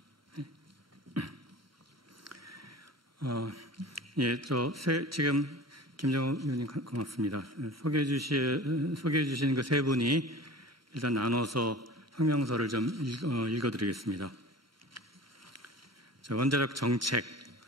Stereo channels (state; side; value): normal; both; correlation 0.39